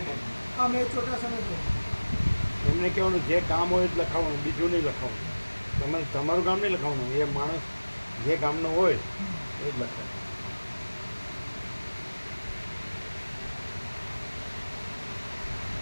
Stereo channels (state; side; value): inverted; both; correlation -1.00